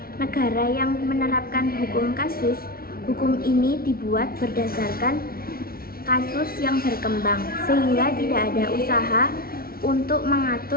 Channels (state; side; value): late; right; 0.44 ms